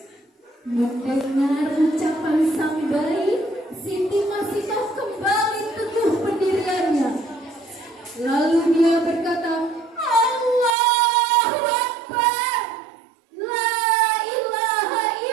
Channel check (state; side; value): drops out; left; at 10.8 s